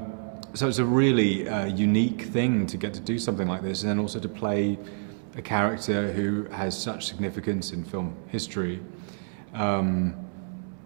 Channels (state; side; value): silent; left; 60 dB below the other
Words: So it's a really unique thing to get to do something like this, and then also to play a character who has such significance in film history.